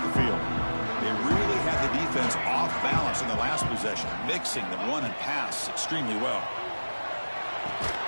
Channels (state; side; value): inverted; both; correlation -1.00